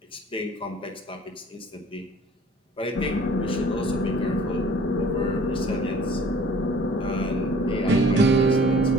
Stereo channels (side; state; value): both; normal; correlation 0.51